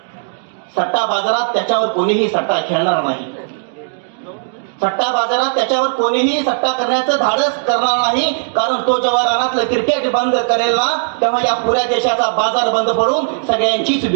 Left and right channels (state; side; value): silent; left; digital silence